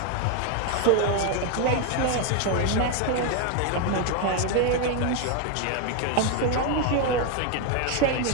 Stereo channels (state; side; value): different; both; correlation 0.01